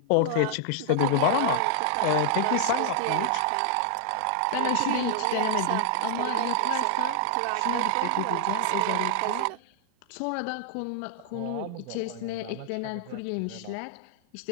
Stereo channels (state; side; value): different; both; correlation 0.00